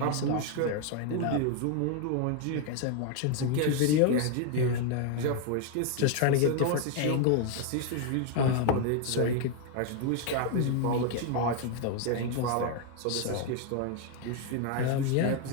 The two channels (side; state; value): both; different; correlation 0.01